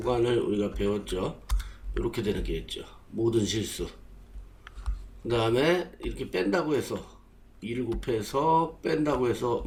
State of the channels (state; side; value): identical; both; correlation 1.00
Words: 우리가 배웠죠. 이렇게 되는 게 있죠. 모든 실수. 그 다음에 이렇게 뺀다고 해서 2를 곱해서 뺀다고 해서